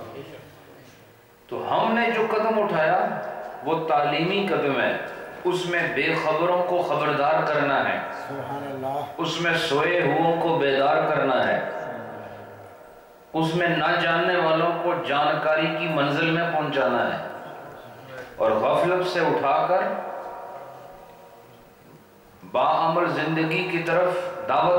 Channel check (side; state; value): both; identical; correlation 1.00